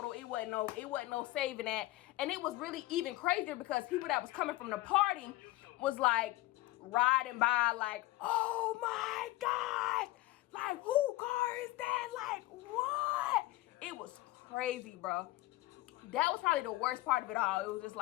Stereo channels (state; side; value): quieter; right; 18.4 dB